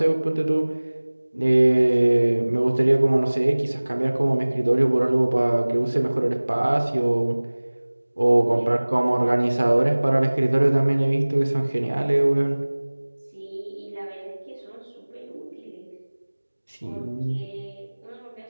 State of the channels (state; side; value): inverted; both; correlation -1.00